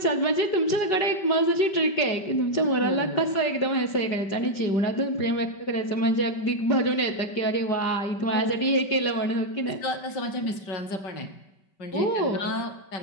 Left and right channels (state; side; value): late; right; 5.2 ms